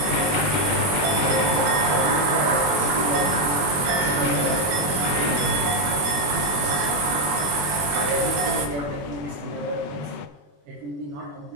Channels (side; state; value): left; late; 21 ms